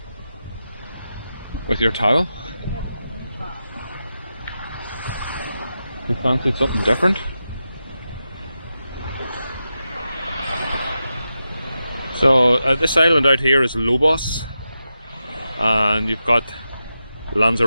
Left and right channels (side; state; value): both; inverted; correlation -0.90